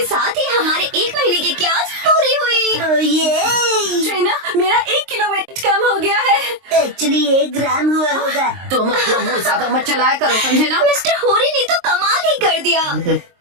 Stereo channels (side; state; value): left; late; 23 ms